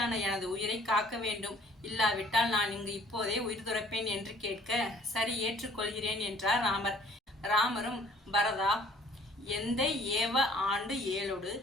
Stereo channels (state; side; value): normal; both; correlation 0.55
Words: எனது உயிரை காக்க வேண்டும். இல்லாவிட்டால் நான் இங்கு இப்போதே உயிர் துறப்பேன் என்று கேட்க, சரி, ஏற்றுக்கொள்கிறேன் என்றார் ராமர். ராமரும், பரதா, எந்தை ஏவ ஆண்டு